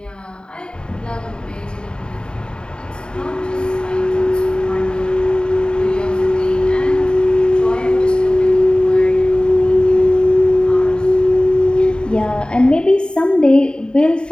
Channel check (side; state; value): right; late; 0.050 ms